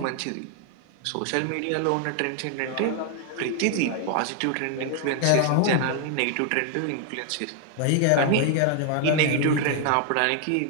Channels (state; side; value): different; both; correlation 0.00